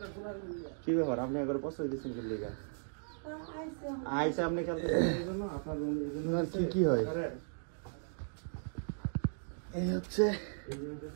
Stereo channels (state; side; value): silent; left; digital silence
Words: কি ব্যাপার, আপনি একবার পছন্দ দিচ্ছেন লিগা আইসা আপনি কি হয় এই হচ্ছে